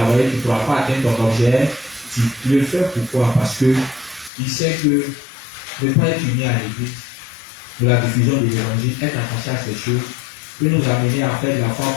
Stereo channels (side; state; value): right; drops out; at 4.3 s